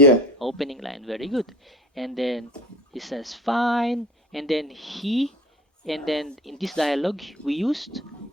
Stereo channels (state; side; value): normal; both; correlation 0.40